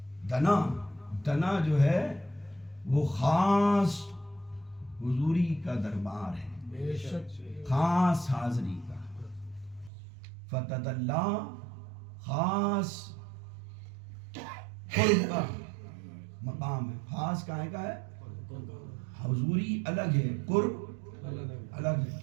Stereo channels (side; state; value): left; drops out; at 9.9 s